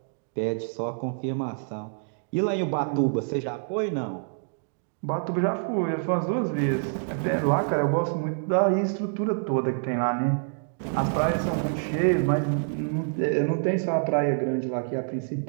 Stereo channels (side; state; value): left; silent; digital silence